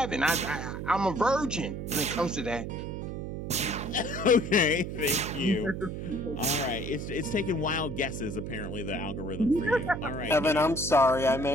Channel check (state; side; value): noise; right; hum, 6 dB below the sound